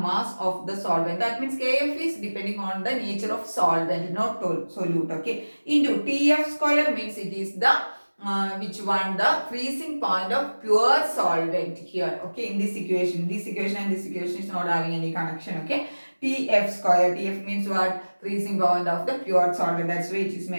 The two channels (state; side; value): inverted; both; correlation -1.00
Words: of the solvent. That means Kf is depending on the nature of solvent, not solute. Okay. Into Tf square means it is the which one? The freezing point of pure solvent here. Okay. In this equation and this equation is not having any connection. Okay. Tf square. Tf means what? Freezing point of the pure solvent. That's why it is